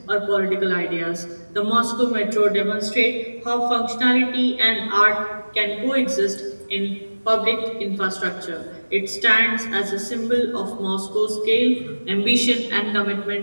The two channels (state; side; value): inverted; both; correlation -1.00